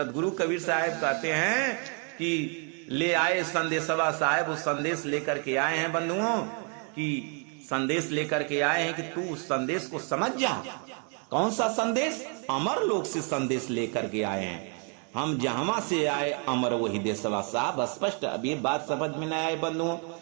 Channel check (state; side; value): quieter; left; 39.6 dB